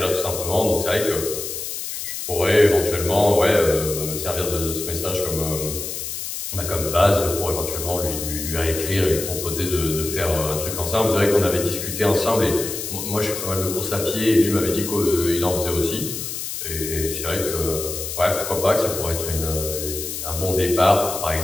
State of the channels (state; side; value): noise; left; hiss, 6 dB below the sound